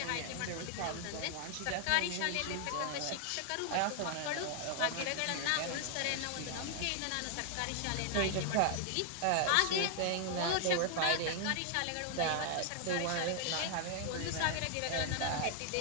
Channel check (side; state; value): both; different; correlation 0.00